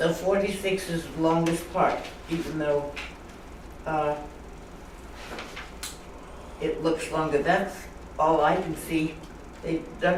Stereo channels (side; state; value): both; identical; correlation 1.00